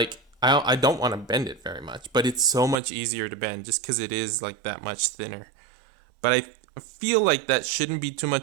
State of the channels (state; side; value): drops out; left; at 2.8 s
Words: I don't want to bend it very much, but it's so much easier to bend just because it is like that much thinner. But I feel like that shouldn't be too